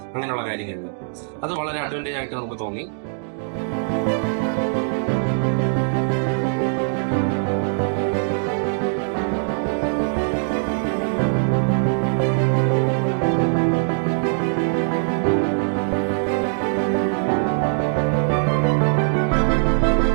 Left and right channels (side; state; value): left; silent; digital silence